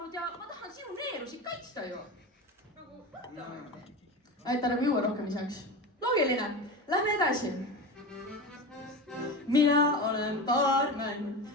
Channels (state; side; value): normal; both; correlation 0.26